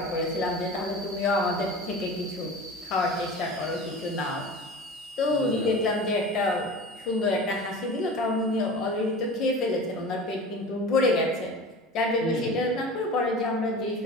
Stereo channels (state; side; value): normal; both; correlation 0.35